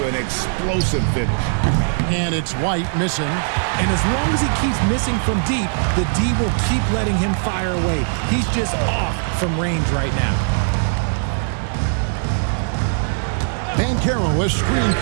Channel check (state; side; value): silent; left; 66 dB below the other